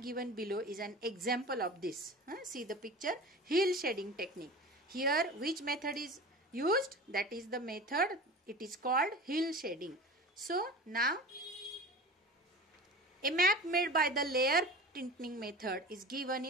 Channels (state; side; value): normal; both; correlation 0.34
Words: given below is an example of this. See the picture, hill shading technique. Here which method is used? That is the method, it is called hill shading. So now a map made by the layer tinting method is given